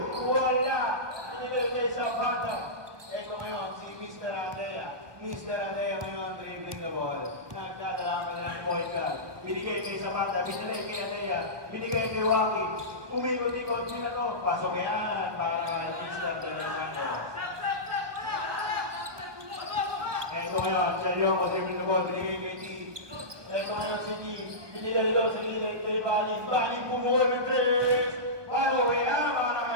Wala. Binigay kay Zapata. Eto ngayon, si Mr. Adea. Mr. Adea ngayon, dribbling the ball. Nagdadala ka ng point guard. Binigay kay Zapata. Binigay kay Adea. Binigay kay Rocky. Umikot-ikot nila to. Pasok yan para Mr. Adea. Eto ngayon, Chelyongo, dribbling the ball. Binigay kay T. Eto ngayon si T. Binigay doon sa gilid kay Balin. Balin bumuhol ng 3. Follow-away na para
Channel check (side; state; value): left; late; 1.3 ms